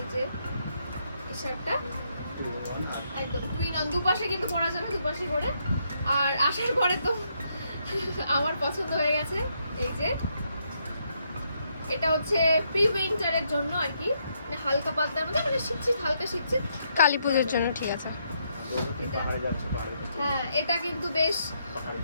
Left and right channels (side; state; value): both; inverted; correlation -0.76